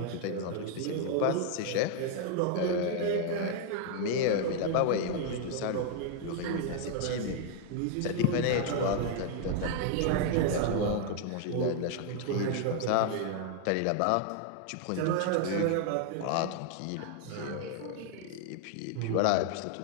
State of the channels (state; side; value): different; both; correlation 0.00